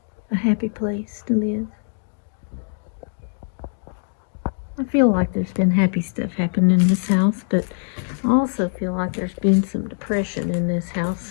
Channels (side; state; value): right; silent; 62 dB below the other